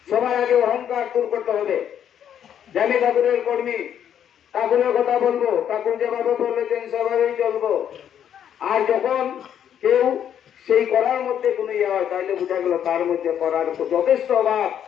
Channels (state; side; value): quieter; right; 9.4 dB